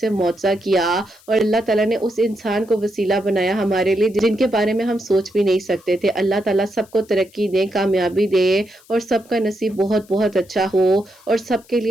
معجزہ کیا، اور اللہ تعالیٰ نے اس انسان کو وسیلہ بنایا ہمارے لیے جن کے بارے میں ہم سوچ بھی نہیں سکتے تھے۔ اللہ تعالیٰ سب کو ترقی دے، کامیابی دے، اور سب کا نصیب بہت بہت اچھا ہو، اور سب کے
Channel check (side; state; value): left; noise; hiss, 28 dB below the sound